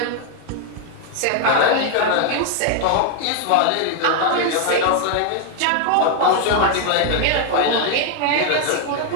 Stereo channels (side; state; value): both; different; correlation 0.00